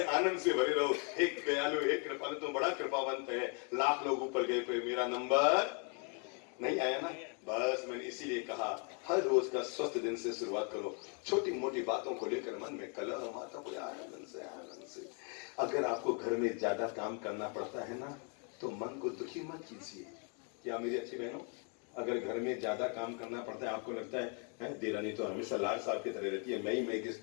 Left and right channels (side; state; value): right; quieter; 37.9 dB